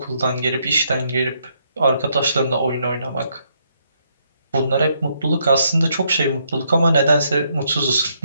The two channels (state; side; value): inverted; both; correlation -0.75